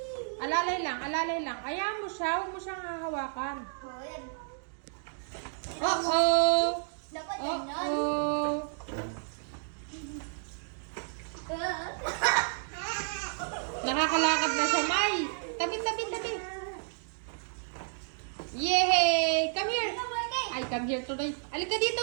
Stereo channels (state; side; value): silent; left; digital silence